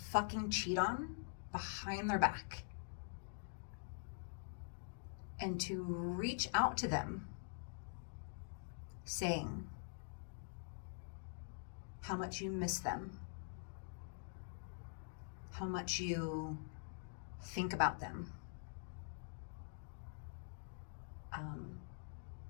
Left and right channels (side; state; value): right; silent; digital silence